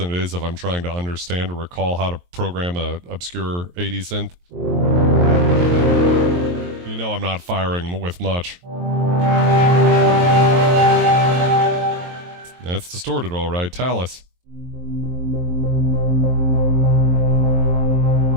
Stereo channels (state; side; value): late; left; 23 ms